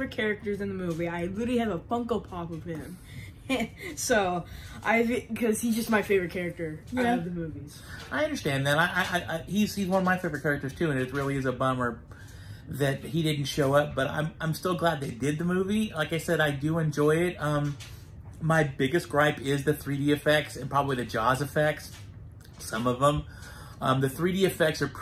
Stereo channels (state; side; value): identical; both; correlation 1.00